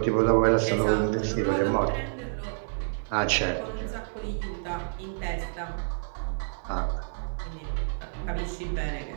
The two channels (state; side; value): silent; left; 58 dB below the other